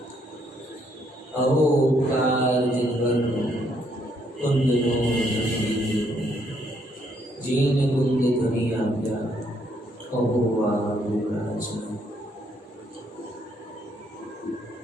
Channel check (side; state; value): both; normal; correlation 0.71